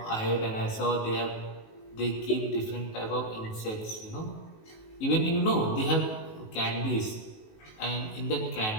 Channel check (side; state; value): right; late; 19 ms